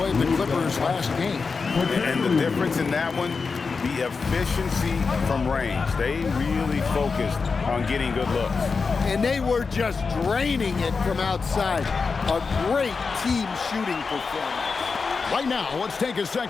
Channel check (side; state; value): right; quieter; 4.8 dB